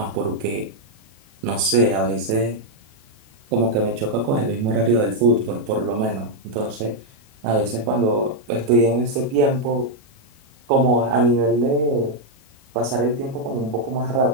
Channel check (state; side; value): late; left; 37 ms